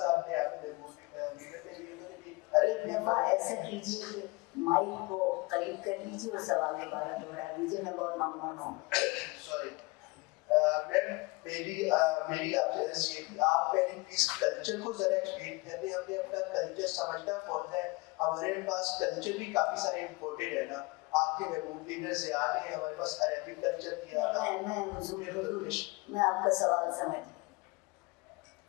ने आपने लीडर ने भी उन्होंने भी अरे ऐसा कीजिए कि माइक को करीब कर लीजिए और सवाल दोबारा दोहरा दीजिए, मैं बहुत ममनून हूँ। सॉरी मैम, मेरी आपसे ये थी, आप पहले प्लीज कल्चर को जरा एक्सप्लेन करते हैं। हमने अपना कल्चर समझना कौन है, हमारे पास कल्चर भी काफी सारे इम्पोर्टेड है ना। आपके महबूब लीडर ज़ियाद ने हमारे पास अरेबिक कल्चर दिया था। मैं आपका सवाल समझ गई,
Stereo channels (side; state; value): right; quieter; 25.0 dB